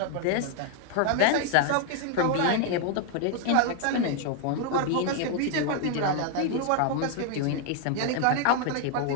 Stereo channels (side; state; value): both; different; correlation 0.00